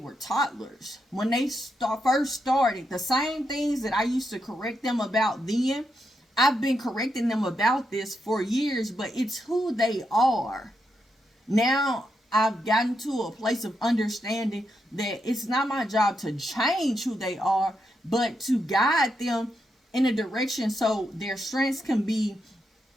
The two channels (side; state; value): both; normal; correlation 0.83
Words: toddlers. When they first started. The same things that I used to correct them about then, I've been correcting them about this for years, but it's who they are. Now I've gotten to a place of understanding that it's not my job to change who they are, but to guide them in a direction so their strengths can